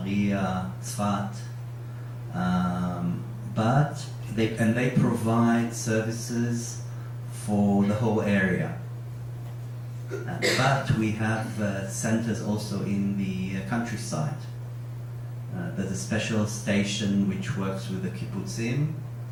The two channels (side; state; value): both; identical; correlation 1.00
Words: Tzfat. But they provide services for the whole area. But we have centers also in the countryside. There's a special station which works with the kibbutzim.